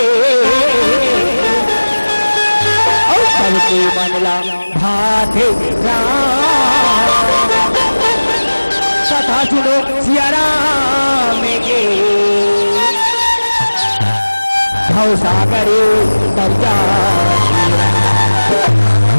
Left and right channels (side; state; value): both; inverted; correlation -1.00